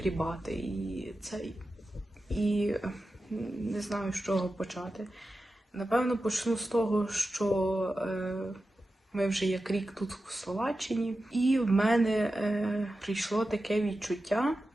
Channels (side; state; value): both; normal; correlation 0.92